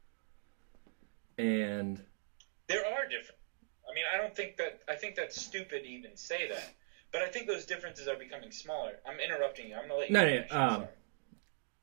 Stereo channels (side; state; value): left; silent; digital silence